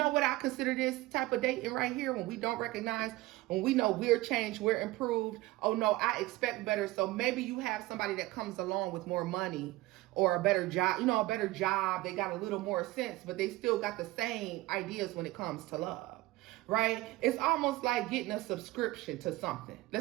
what I consider this type of dating right here, when we don't recognize, when we know we're changed, we're improved. Oh no, I expect better. So maybe you have somebody that comes along with more money or a better job, a better job. They got a little more sense, but they still got the same ideas when it comes to love. Right? It's almost like getting a subscription to something.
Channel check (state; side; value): quieter; left; 18.8 dB